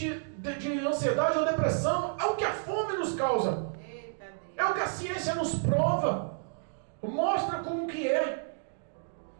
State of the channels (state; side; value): silent; left; digital silence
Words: ansiedade ou depressão. É o que a fome nos causa, Eita, Deus. é o que a ciência nos prova, mostra como que é.